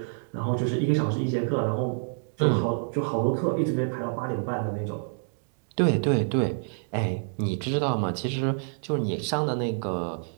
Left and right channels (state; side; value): silent; left; digital silence